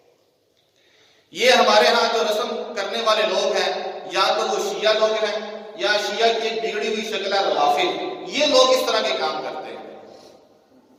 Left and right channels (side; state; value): both; identical; correlation 1.00